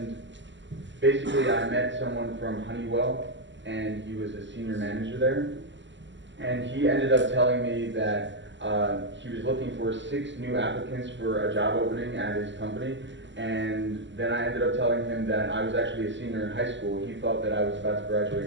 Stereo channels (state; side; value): late; left; 0.54 ms